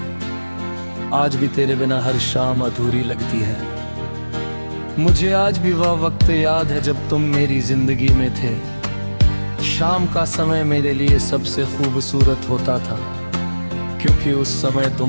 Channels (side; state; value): both; inverted; correlation -1.00